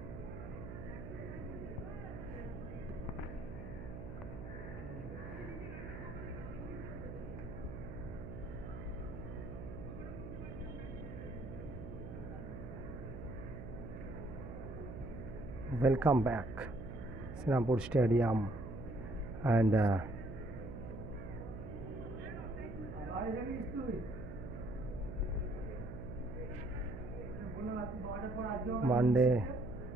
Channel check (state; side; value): noise; right; hum, 9 dB below the sound